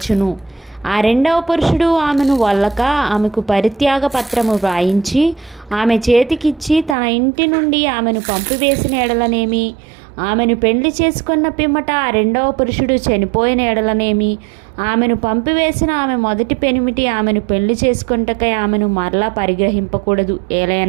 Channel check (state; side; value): drops out; left; at 7.0 s